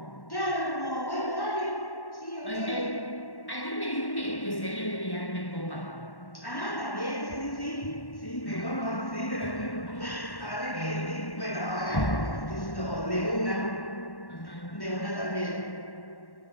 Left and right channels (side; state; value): right; late; 1.1 ms